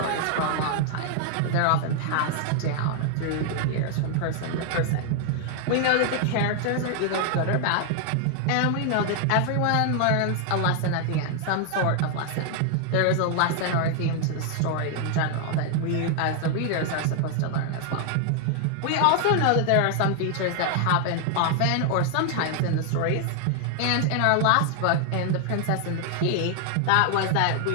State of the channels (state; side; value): different; both; correlation 0.00